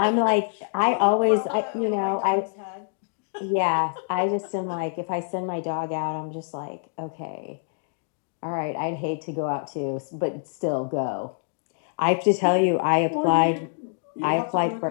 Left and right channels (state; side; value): silent; right; digital silence